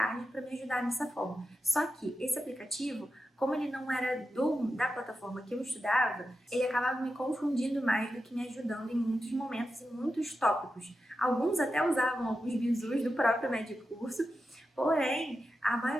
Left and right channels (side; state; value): both; normal; correlation 0.90